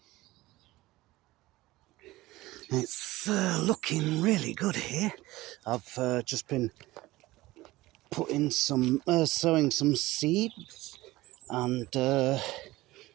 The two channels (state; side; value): quieter; left; 18.4 dB